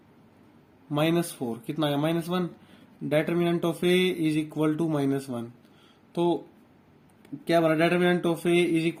माइनस 4 कितना आया -1, determinant of A is equal to -1। तो क्या बना, determinant of A is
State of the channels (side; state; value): both; identical; correlation 1.00